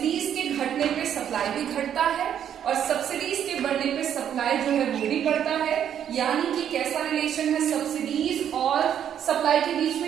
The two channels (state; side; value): quieter; left; 9.4 dB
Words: के घटने पे सप्लाई भी घटता है, और सब्सिडीज के बढ़ने पे सप्लाई जो है वो भी बढ़ता है। यानी कि कैसा रिलेशन है सब्सिडीज और सप्लाई के बीच